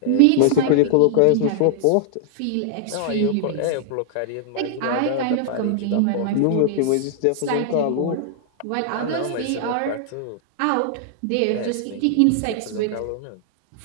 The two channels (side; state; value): both; different; correlation -0.01